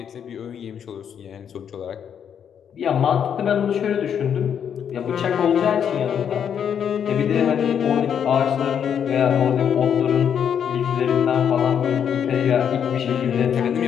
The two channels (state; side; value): quieter; right; 8.3 dB